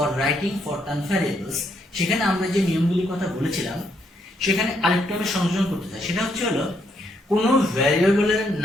writing Fortran variables, সেখানে আমরা যে নিয়মগুলির কথা বলেছিলাম সেখানে আরেকটু আমি সংযোজন করতে চাই। সেটা হচ্ছে হলো কোনো ভ্যারিয়েবলের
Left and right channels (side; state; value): both; normal; correlation 0.74